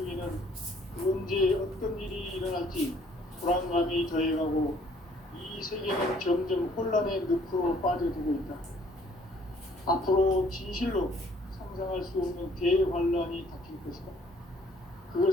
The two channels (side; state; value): both; normal; correlation 0.60